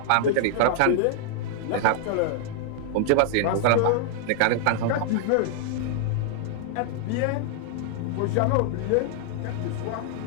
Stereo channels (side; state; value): both; different; correlation -0.01